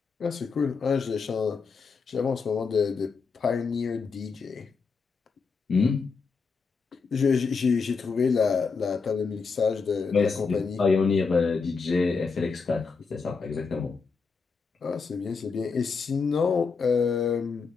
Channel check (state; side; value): quieter; right; 5.0 dB